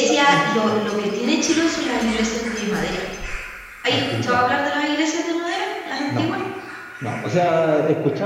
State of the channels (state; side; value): identical; both; correlation 1.00